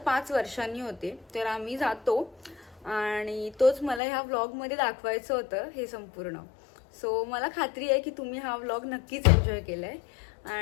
वर्षांनी होते. तर आम्ही जातो आणि तोच मला ह्या व्लॉगमध्ये दाखवायचं होतं हे संपूर्ण. सो मला खात्री आहे की तुम्ही हा व्लॉग नक्कीच एन्जॉय केलाय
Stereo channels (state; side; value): drops out; right; at 4.0 s